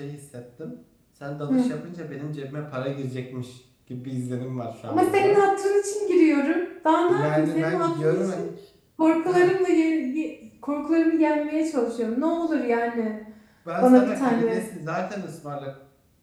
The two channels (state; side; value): identical; both; correlation 1.00